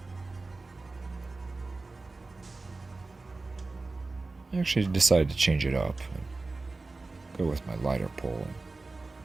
I actually decided to change it up and go with my lighter pole and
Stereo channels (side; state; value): left; quieter; 3.5 dB